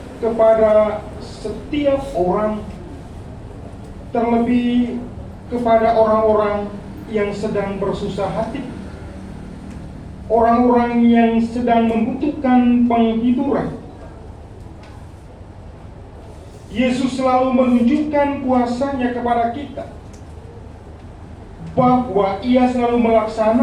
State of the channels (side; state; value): both; identical; correlation 1.00